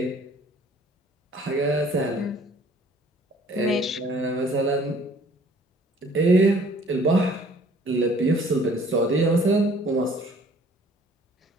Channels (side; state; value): both; normal; correlation 0.55